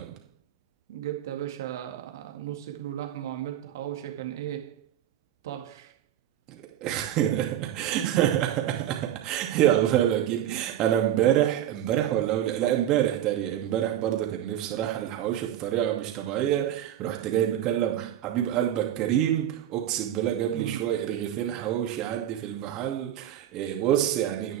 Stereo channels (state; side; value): quieter; left; 11.3 dB